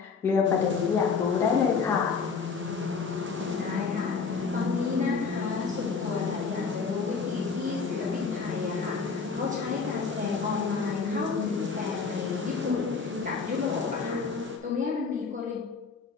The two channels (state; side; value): quieter; right; 5.1 dB